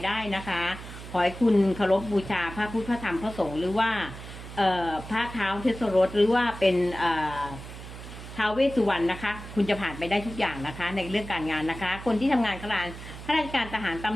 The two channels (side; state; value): right; noise; hum, 13 dB below the sound